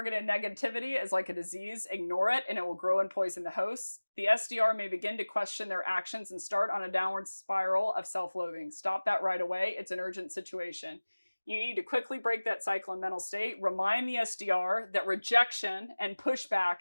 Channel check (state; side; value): inverted; both; correlation -1.00